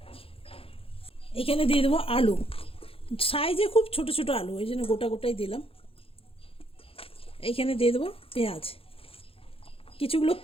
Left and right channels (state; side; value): late; right; 0.27 ms